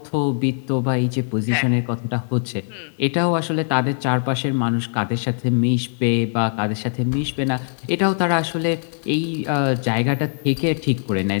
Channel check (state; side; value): silent; right; digital silence